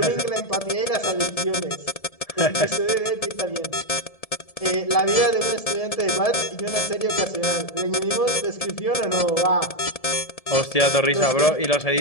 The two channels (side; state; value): right; late; 1.7 ms